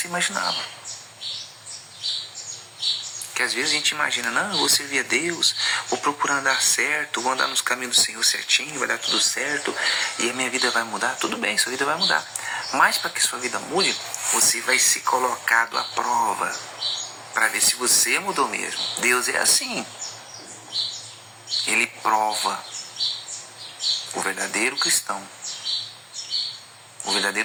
imaginava. Que às vezes a gente imagina, não, eu vou servir a Deus, vou procurar andar certo, vou andar nos caminhos do Senhor certinho, vai dar tudo certo, e a minha vida vai mudar. Tudo bem, sua vida vai mudar. Mas para que sua vida mude, você vai ser colocado à prova, para ver se você mudou mesmo. Deus é assim. Ele prova o verdadeiro cristão O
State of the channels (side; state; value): both; identical; correlation 1.00